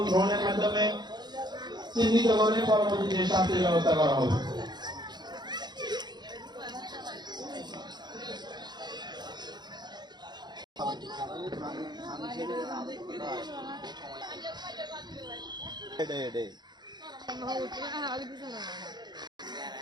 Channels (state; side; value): late; left; 0.21 ms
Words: ড্রোনের মাধ্যমে চিহ্নিত করে পরবর্তীতে শাস্তির ব্যবস্থা করা হবে।